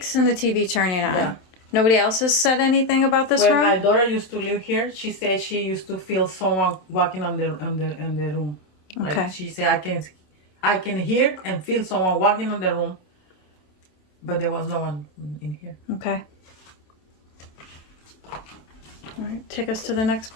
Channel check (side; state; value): right; late; 27 ms